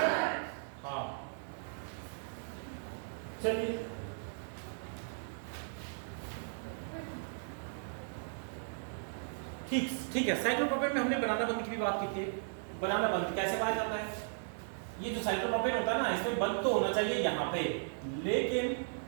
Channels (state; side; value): silent; left; digital silence